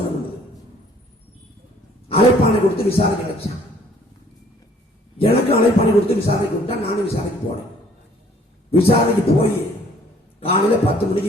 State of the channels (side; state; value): both; normal; correlation 0.58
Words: பண்ணது. அழைப்பானை கொடுத்து விசாரணை கிடைச்சான். எனக்கு அழைப்பானை கொடுத்து விசாரணை கொடுத்தா நானும் விசாரணைக்கு போனேன். விசாரணைக்கு போய் காலையில 10